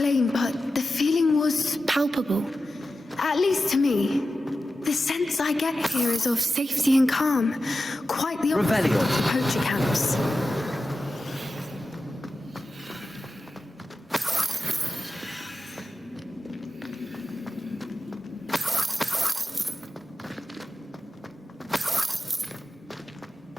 but the feeling was palpable. At least to me. The sense I get here is of safety and calm. Quite the opposite of the poacher camps.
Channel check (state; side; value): normal; both; correlation 0.93